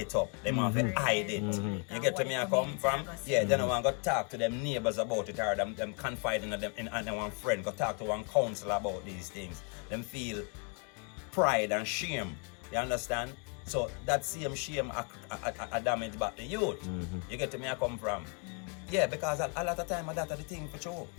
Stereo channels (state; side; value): quieter; right; 37.6 dB